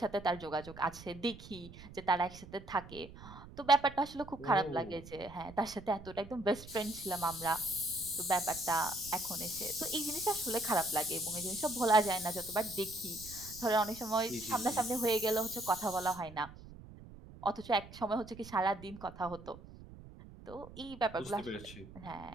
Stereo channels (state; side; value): noise; right; rumble, 17 dB below the sound